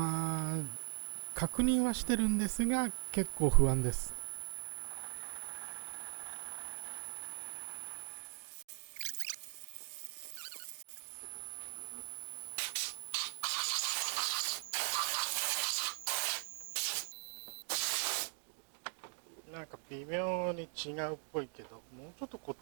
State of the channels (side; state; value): left; silent; 51 dB below the other